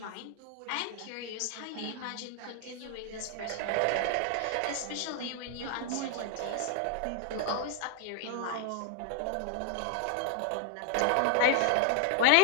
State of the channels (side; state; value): both; different; correlation 0.00